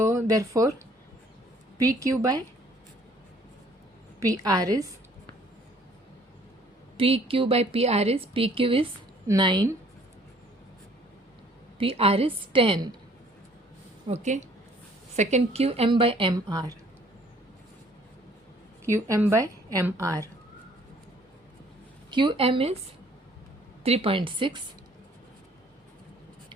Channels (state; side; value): normal; both; correlation 0.58